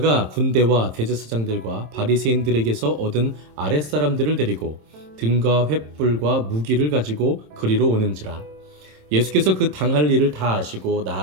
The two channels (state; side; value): late; left; 27 ms